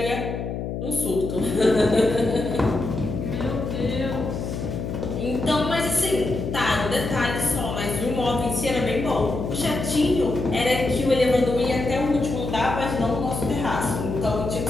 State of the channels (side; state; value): left; noise; hum, 5 dB below the sound